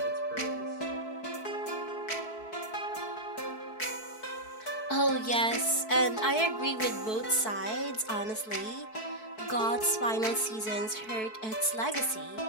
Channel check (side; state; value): right; late; 4.6 ms